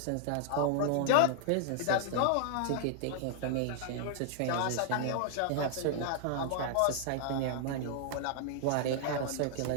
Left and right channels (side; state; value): both; different; correlation 0.00